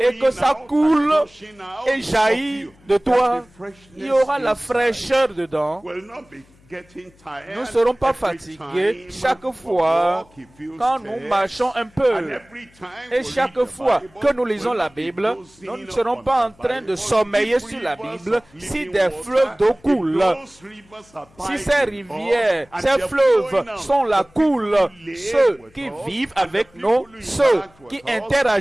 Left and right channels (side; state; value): left; noise; hum, 29 dB below the sound